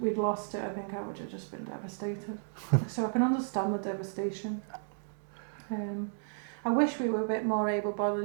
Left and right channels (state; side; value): silent; left; digital silence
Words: we'd lost it, I think I would have just been devastated. So I can understand the devastation. I wish we were a bit more